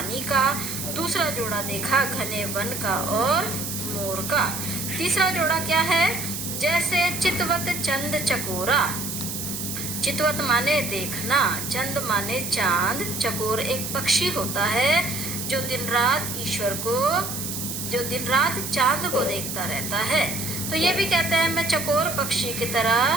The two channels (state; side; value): noise; right; hiss, 5 dB below the sound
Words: का, दूसरा जोड़ा देखा घने वन का और मोर का। तीसरा जोड़ा क्या है? जैसे चितवत चंद चकोरा। चितवत माने देखना, चंद माने चांद, चकोर एक पक्षी होता है जो दिन रात चांद को देखता रहता है। तो ये भी कहते हैं मैं चकोर पक्षी की